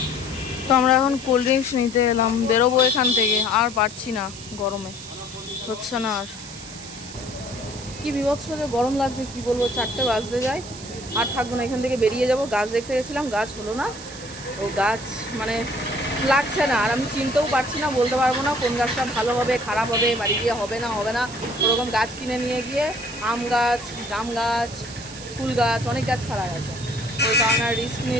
তো আমরা এখন কোল্ড ড্রিঙ্কস নিতে এলাম, বেরোবো এখান থেকে। আর পারছি না, গরমে হচ্ছে না আর। কি বিভৎস যে গরম লাগছে, কি বলবো। 4টে বাজতে যায়, আর থাকবো না, এখান থেকে বেরিয়ে যাব। গাছ দেখতে গেছিলাম, গাছ হলো না। ও গাছ মানে লাগছে না, আর আমি চিনতেও পারছি না, বলতে পারবো না কোন গাছটা ভালো হবে খারাপ হবে, বাড়ি গিয়ে হবে না হবে না। ওরকম গাছ কিনে নিয়ে গিয়ে আম গাছ, জাম গাছ, ফুল গাছ, অনেক গাছ খারাপ আছে, ওই কারণে আর রিস্ক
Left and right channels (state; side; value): noise; right; hiss, 14 dB below the sound